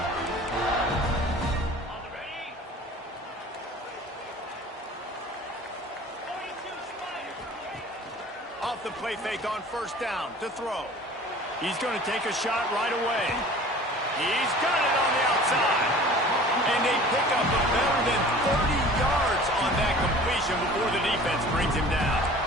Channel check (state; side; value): normal; both; correlation 0.45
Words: Off the play fake on first down to throw. He's going to take a shot right away. He's got it on the outside. And they pick up a better than 30 yards on that completion before the defense brings him down.